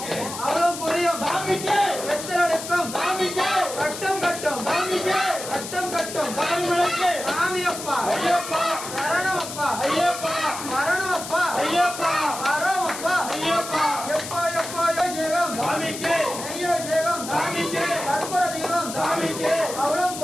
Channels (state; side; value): noise; left; hiss, 9 dB below the sound